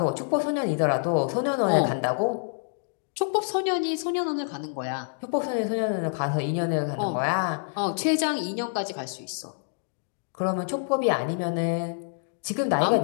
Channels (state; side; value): silent; right; digital silence